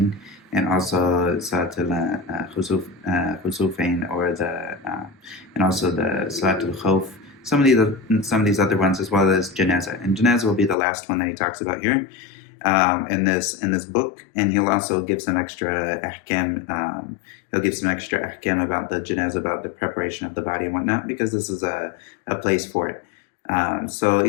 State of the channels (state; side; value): drops out; right; at 10.8 s